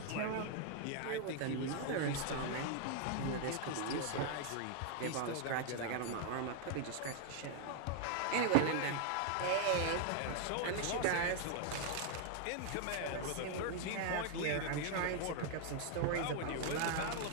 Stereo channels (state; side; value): different; both; correlation 0.00